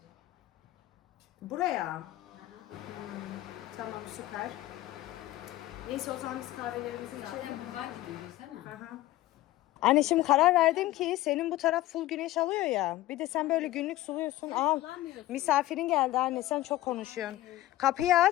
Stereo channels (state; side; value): quieter; right; 16.1 dB